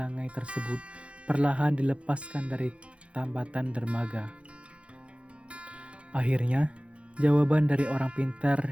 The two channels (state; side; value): late; left; 0.060 ms